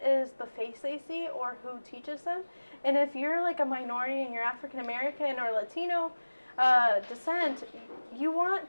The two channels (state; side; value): inverted; both; correlation -1.00